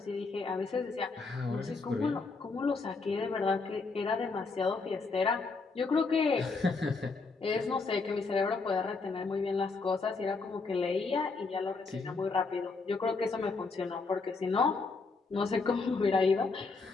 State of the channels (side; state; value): right; quieter; 4.1 dB